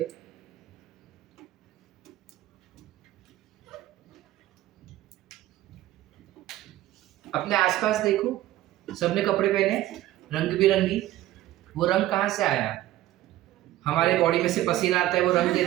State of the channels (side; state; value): left; quieter; 14.8 dB